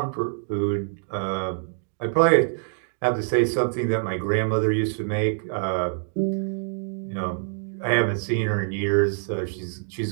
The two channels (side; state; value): left; silent; digital silence